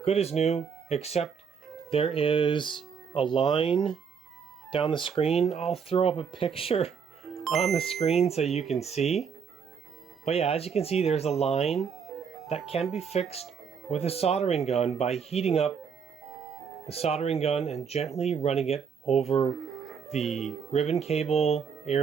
good as new, except there is a line down the screen. I'll throw up a picture on the screen so you can see. But yeah, as you can see, there's a line that can be fixed with a soldering gun by heating up the soldering gun and gently running it over the ribbon cable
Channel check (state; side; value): quieter; left; 6.6 dB